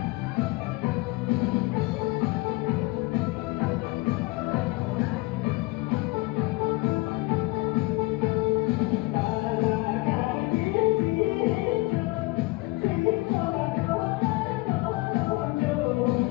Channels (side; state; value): right; quieter; 22.1 dB